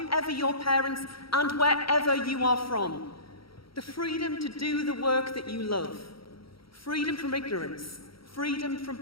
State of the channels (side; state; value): right; late; 0.75 ms